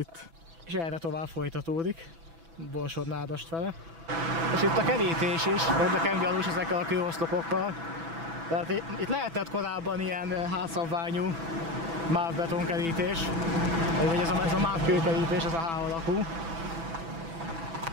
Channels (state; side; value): late; left; 6.0 ms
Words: És erre tovább folytatódik, Borsod-Nádast fele. És itt a kerítés is, nekem gyanús ezekkel a kőoszlopokkal. Tehát itt lehetett korábban ilyen házszabványú mávbetonkerítés, vagy ez a mávkőkerítés, ez a H alakú,